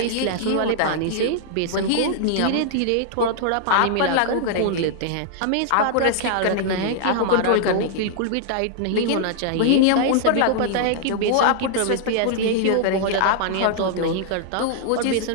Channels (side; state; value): both; different; correlation -0.01